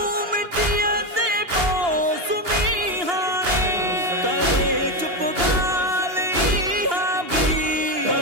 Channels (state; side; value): late; left; 2.8 ms